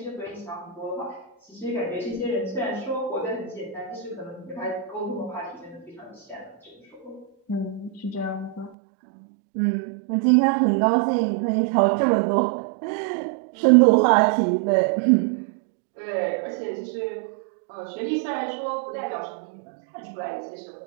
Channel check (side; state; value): left; drops out; at 8.7 s